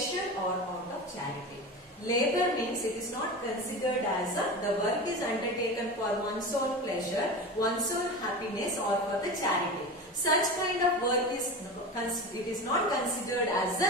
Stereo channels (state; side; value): normal; both; correlation 0.28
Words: or out of charity. Labor means it is not considered as the work is undertaken for one's own pleasure, one's own happiness or for the charity. Such kind of work is not considered as